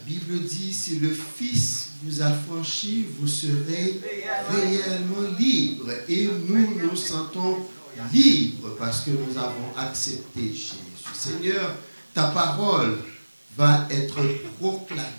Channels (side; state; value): both; inverted; correlation -1.00